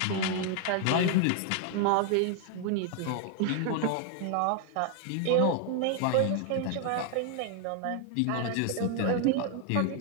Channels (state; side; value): different; both; correlation 0.00